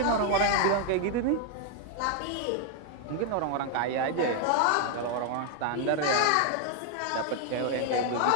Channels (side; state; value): both; different; correlation 0.00